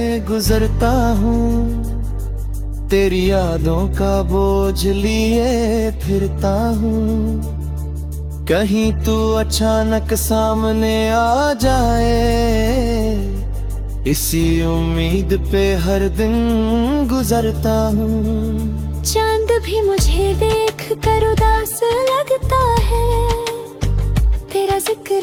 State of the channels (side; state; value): both; identical; correlation 1.00